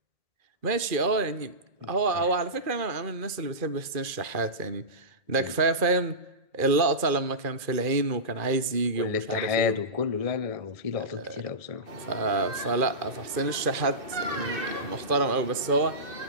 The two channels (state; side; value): late; left; 2.4 ms